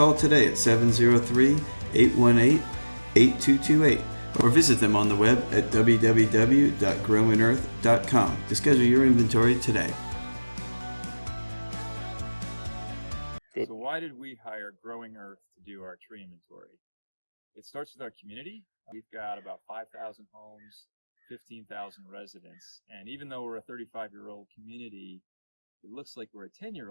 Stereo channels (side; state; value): both; inverted; correlation -1.00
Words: today at 703-818-8228 or visit them on the web at www.growandearth.com to schedule your inventory today. So why did we hire Growing Earth to do our tree inventory? It starts with our community. We've got about 5,000 homes, 15,000 residents. And even though we're a 35-year-old community, it looks like we're a